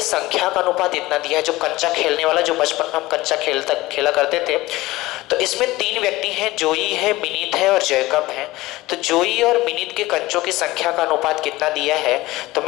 संख्या का अनुपात इतना दिया है। जो कंचा खेलने वाला, जो बचपन में हम कंचा खेला करते थे, तो इसमें 3 व्यक्ति हैं, जोई है, मिनित है और जैकब है। तो जोई और मिनित के कंचों की संख्या का अनुपात कितना दिया है, तो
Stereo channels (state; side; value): quieter; right; 18.9 dB